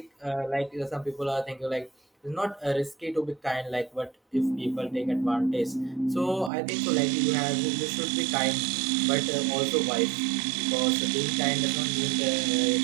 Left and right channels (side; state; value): left; drops out; at 6.5 s